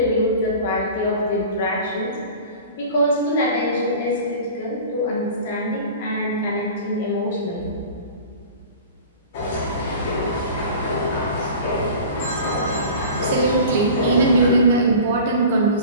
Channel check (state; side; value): inverted; both; correlation -0.39